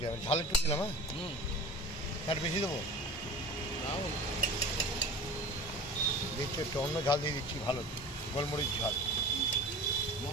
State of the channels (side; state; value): both; normal; correlation 0.38